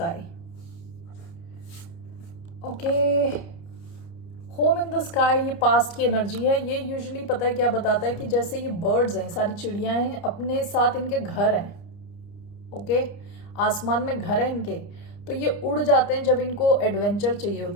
Okay, home in the sky ये पास्ट की एनर्जी है। ये यूजुअली पता है क्या बताता है कि जैसे ये बर्ड्स हैं, सारी चिड़ियां हैं, अपने साथ इनके घर हैं। ओके, आसमान में घर है इनके, तो ये उड़ जाते हैं जब इनको एडवेंचर चाहिए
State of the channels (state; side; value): late; right; 29 ms